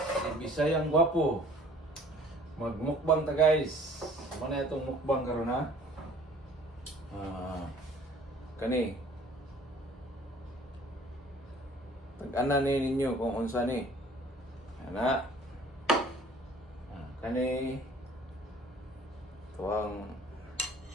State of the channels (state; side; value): normal; both; correlation 0.53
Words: Bisayang Gwapo. Magmukbang ta guys. Mana itong mukbang karon ha? Kani. Tag-ana ni ninyo kung unsa ni. Ana. Kani. Tuwang